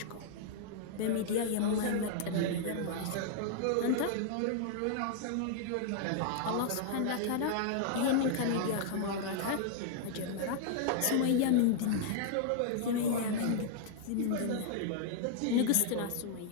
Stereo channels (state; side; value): different; both; correlation -0.01